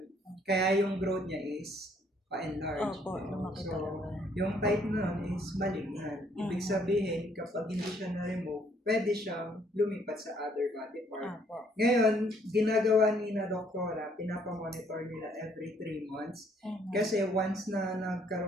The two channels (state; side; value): normal; both; correlation 0.66